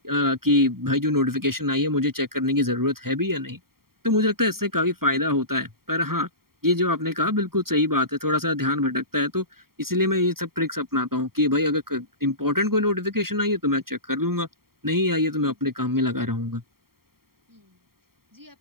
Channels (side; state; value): left; late; 0.93 ms